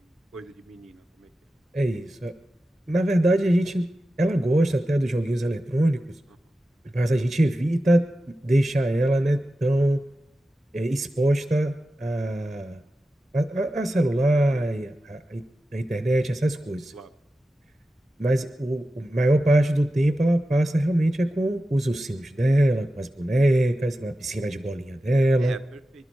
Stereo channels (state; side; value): normal; both; correlation 0.93